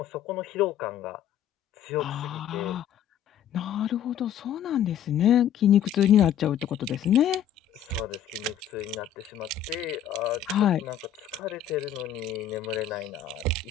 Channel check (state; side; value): quieter; right; 9.1 dB